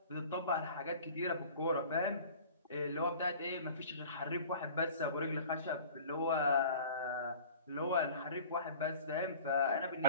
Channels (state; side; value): inverted; both; correlation -0.44